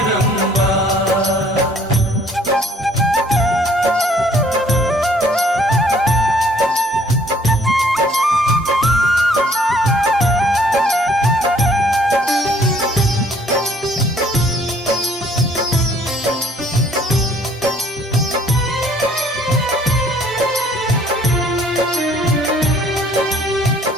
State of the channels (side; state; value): both; normal; correlation 0.60